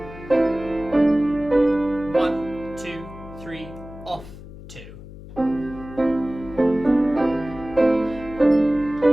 One, two, three, off, 2.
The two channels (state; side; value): noise; left; hum, 15 dB below the sound